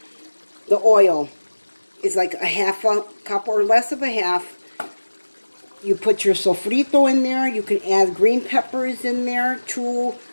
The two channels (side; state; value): both; inverted; correlation -1.00